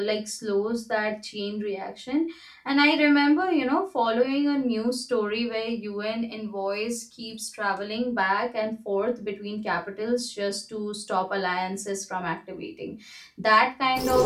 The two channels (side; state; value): both; identical; correlation 1.00